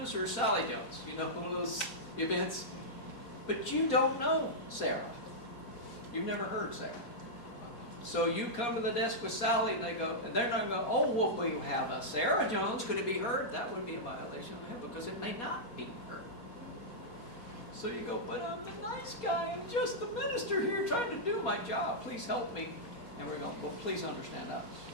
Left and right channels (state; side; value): late; right; 4.2 ms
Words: her Sally Jones. You know, one of those events. But you don't know Sarah. You've never heard Sarah. So you come to the desk with Sally, and they're not going to go, oh, well, we have a Sarah Jones. Could it be her? That would be a violation of HIPAA because it may not be her. So you go, but I'm the nice guy. I'm just the minister here trying to do my job. Please help me. And we're going, well, please understand us,